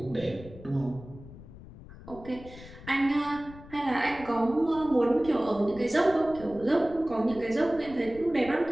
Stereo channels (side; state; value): left; noise; rumble, 17 dB below the sound